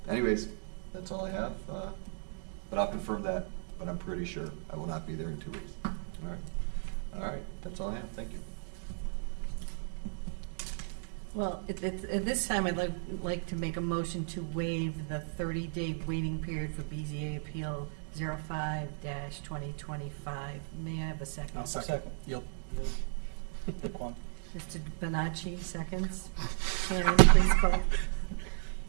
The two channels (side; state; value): left; silent; 55 dB below the other